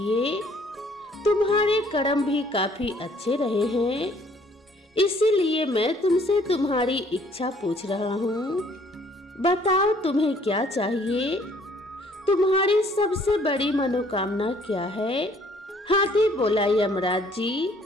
तुम्हारे कर्म भी काफी अच्छे रहे हैं। इसीलिए मैं तुमसे तुम्हारी इच्छा पूछ रहा हूँ। बताओ, तुम्हें क्या चाहिए? तुम्हारी सबसे बड़ी मनोकामना क्या है? हाथी बोला, यमराज जी,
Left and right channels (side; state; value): both; normal; correlation 0.61